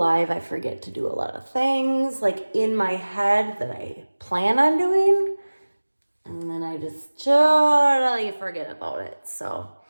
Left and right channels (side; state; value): both; inverted; correlation -1.00